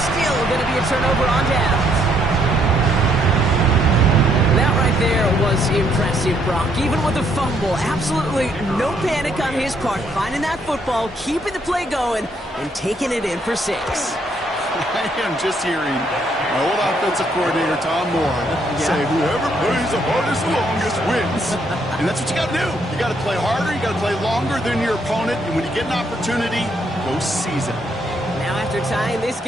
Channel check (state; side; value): normal; both; correlation 0.71